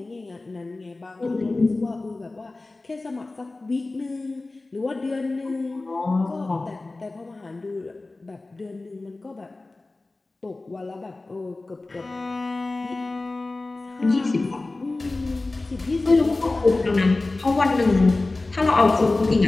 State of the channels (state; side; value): quieter; right; 3.2 dB